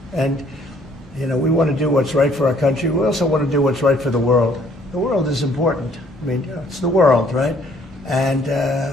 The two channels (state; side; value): normal; both; correlation 0.62